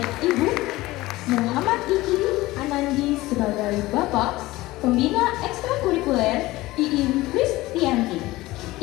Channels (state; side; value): quieter; right; 18.6 dB